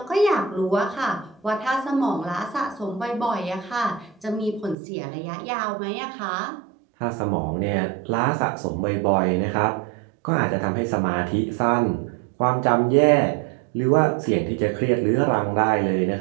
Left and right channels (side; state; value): left; drops out; at 4.8 s